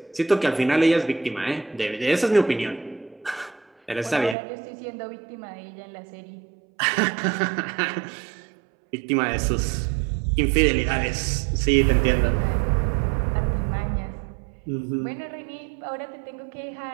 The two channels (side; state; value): left; drops out; at 4.4 s